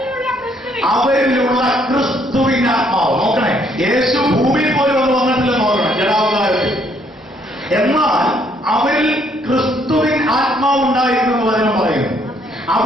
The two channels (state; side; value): normal; both; correlation 0.68